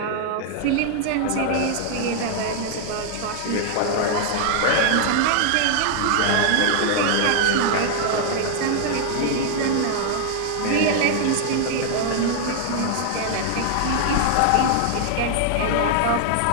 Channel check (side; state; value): both; different; correlation 0.00